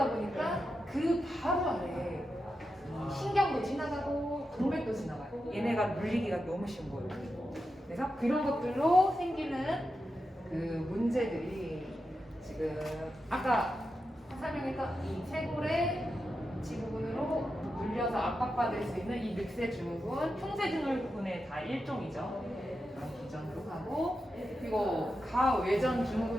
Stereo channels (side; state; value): both; normal; correlation 0.89